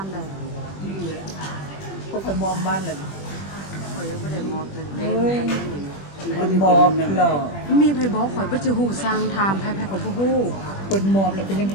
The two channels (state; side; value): late; right; 21 ms